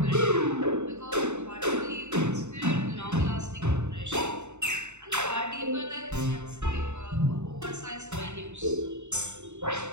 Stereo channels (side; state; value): left; late; 0.83 ms